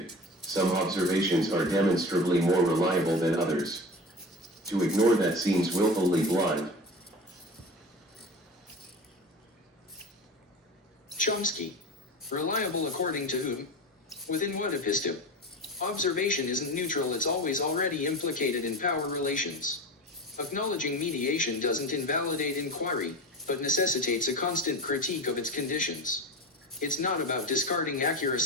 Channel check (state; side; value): normal; both; correlation 0.31